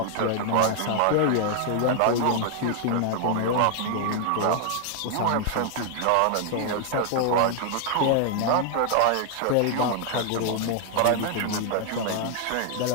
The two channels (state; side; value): different; both; correlation 0.00